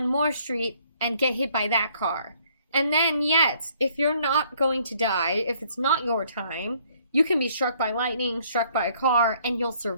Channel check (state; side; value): inverted; both; correlation -0.63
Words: more street and get hit by that car. And then, yet, if you're not going to die, if it's not your time, you can be struck by lightning, struck by a car, and you'll